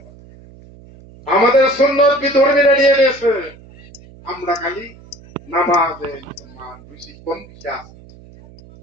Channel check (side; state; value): right; noise; hum, 22 dB below the sound